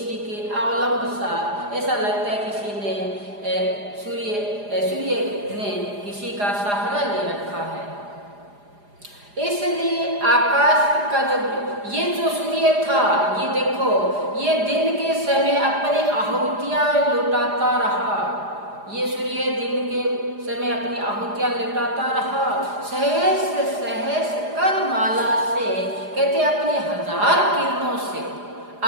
के अवलंब सा ऐसा लगता है किसी ने सूर्य ने किसी का सहारा ले रखा है। इसलिए आकाश का ये जो सूर्य था, ये देखो ये दिन के समय अपनी आहूतियां लुटाता रहा, ये सूर्य दिन के समय अपनी आहूतियां लुटाता रहा। सहस सहस कर माला से कहते अपनी हजार किरणों से,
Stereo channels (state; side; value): late; left; 4.9 ms